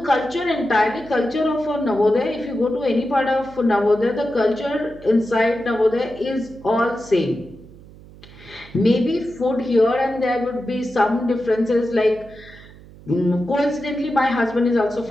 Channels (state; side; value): noise; right; hum, 21 dB below the sound